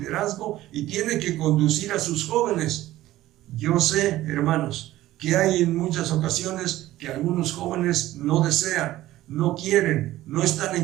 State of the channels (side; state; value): left; quieter; 15.4 dB